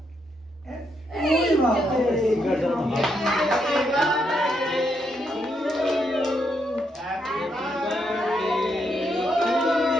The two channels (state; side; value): normal; both; correlation 0.78